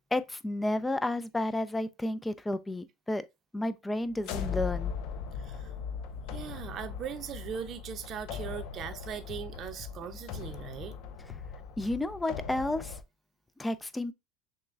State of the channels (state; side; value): normal; both; correlation 0.79